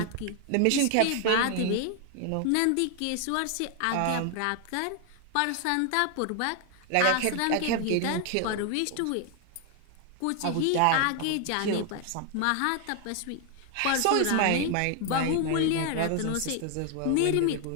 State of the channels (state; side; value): different; both; correlation 0.00